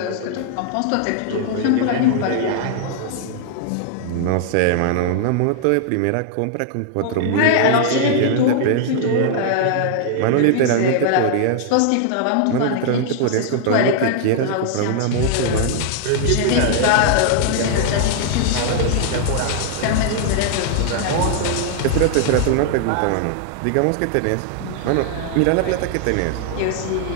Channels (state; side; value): different; both; correlation -0.01